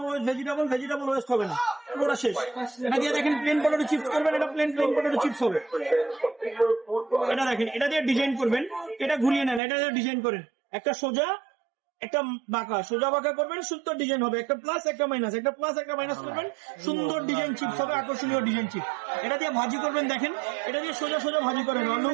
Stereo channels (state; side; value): drops out; left; at 9.6 s